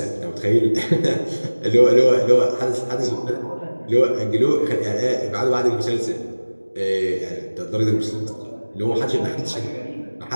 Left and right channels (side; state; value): both; inverted; correlation -1.00